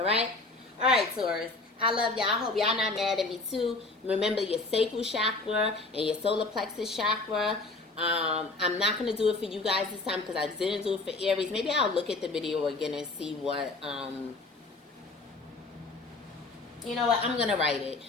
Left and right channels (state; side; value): quieter; right; 3.3 dB